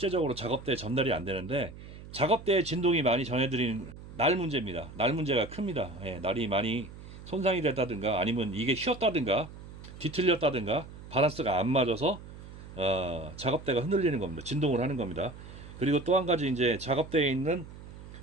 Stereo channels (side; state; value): right; noise; hum, 15 dB below the sound